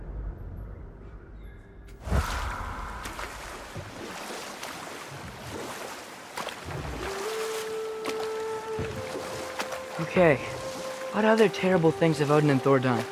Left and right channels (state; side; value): identical; both; correlation 1.00